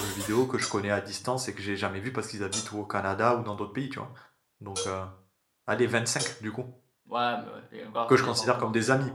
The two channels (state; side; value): identical; both; correlation 1.00